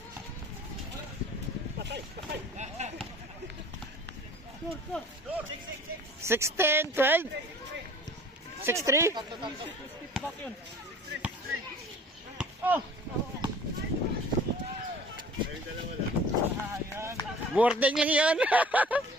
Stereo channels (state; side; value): normal; both; correlation 0.48